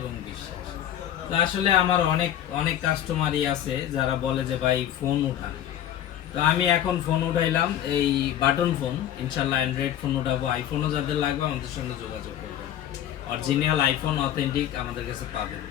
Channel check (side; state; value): right; quieter; 11.1 dB